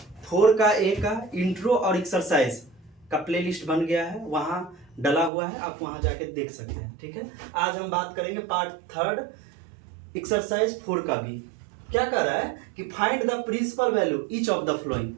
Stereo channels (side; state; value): left; drops out; at 5.3 s